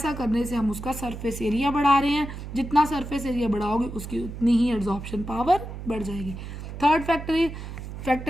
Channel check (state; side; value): noise; right; hum, 9 dB below the sound